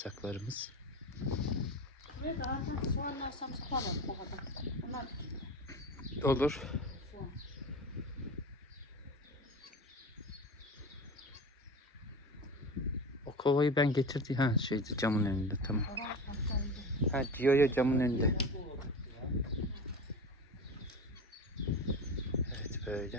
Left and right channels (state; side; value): normal; both; correlation 0.30